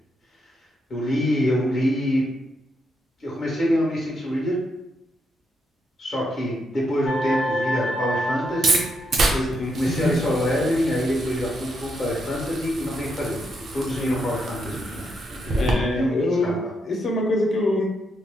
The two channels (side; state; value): both; normal; correlation 0.80